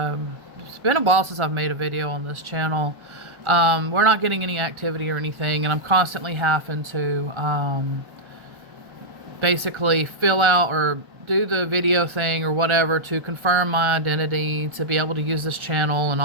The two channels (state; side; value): late; left; 1.4 ms